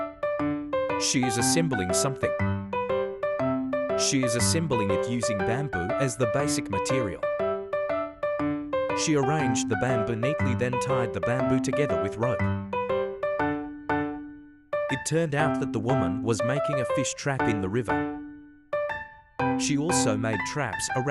She is assembling something. She is assembling it using bamboo as the basic material. She arranged the bamboo neatly, then tied the bamboo together with rope. It turned out that the woman was making a fish trap in the river. She also made traps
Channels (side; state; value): both; identical; correlation 1.00